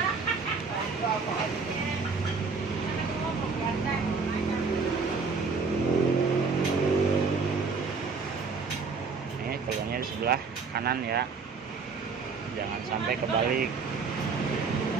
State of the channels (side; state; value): left; quieter; 4.8 dB